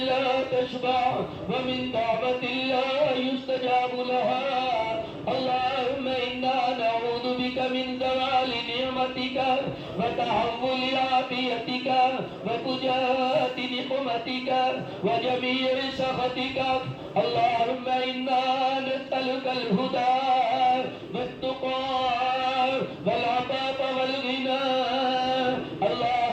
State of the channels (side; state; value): both; identical; correlation 1.00